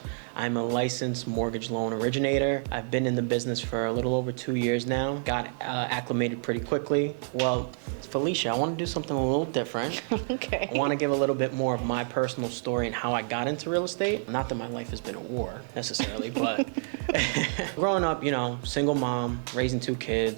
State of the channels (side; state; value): left; silent; 59 dB below the other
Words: I'm a licensed mortgage loan originator. I've been in the business for a little over 2 years now. Got acclimated pretty quickly. Well, Felicia, I want to do something a little different. Okay. I want to give a little bit more of my personal story and how I got into real estate. Not that my life has been a war necessarily, but growing up, single mom, raising 2